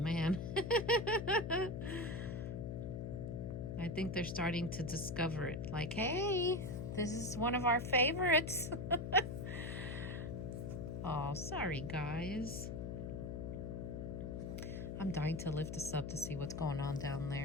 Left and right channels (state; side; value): noise; left; hum, 5 dB below the sound